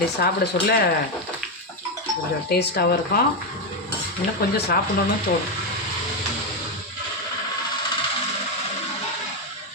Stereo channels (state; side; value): normal; both; correlation 0.07